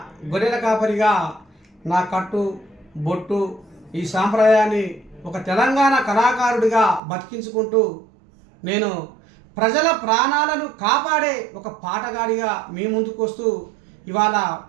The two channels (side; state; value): left; drops out; at 7.0 s